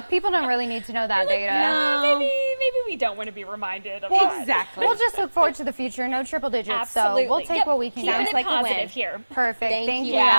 people don't really need to know that data. Maybe we don't want to be reminded of that. Exactly. We'll just look forward to the future. No triple digits, Absolutely. so we'll take Yep. what we can Keeping get. it like a win. positive here. Perfect. Thank you, you,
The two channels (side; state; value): both; inverted; correlation -1.00